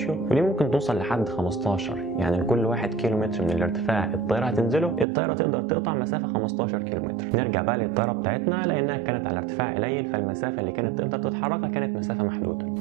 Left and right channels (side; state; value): left; drops out; at 5.1 s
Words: ودي ممكن توصل لحد 15. يعني لكل 1 كيلومتر من الارتفاع الطياره هتنزله الطياره تقدر تقطع مسافه 15 كيلومتر. نرجع بقى للطياره بتاعتنا، لانها كانت على ارتفاع قليل فالمسافه اللي كانت تقدر تتحركها كانت مسافه محدوده.